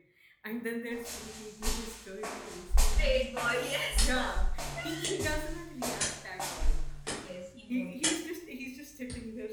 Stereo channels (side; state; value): both; identical; correlation 1.00